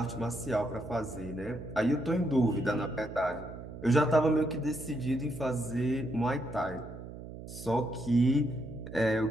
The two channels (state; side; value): noise; right; hum, 12 dB below the sound